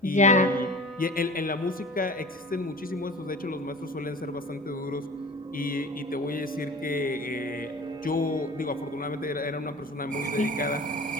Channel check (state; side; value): normal; both; correlation 0.39